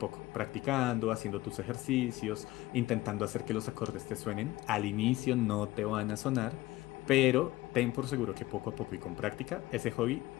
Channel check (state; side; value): quieter; right; 18.0 dB